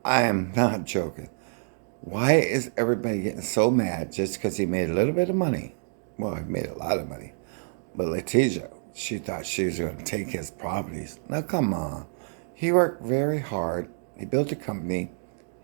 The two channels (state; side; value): silent; left; digital silence